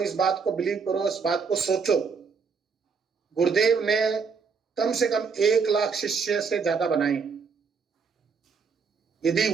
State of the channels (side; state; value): left; quieter; 5.5 dB